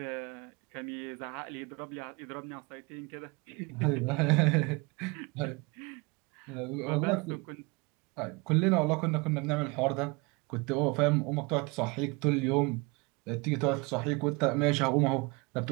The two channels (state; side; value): quieter; left; 27.1 dB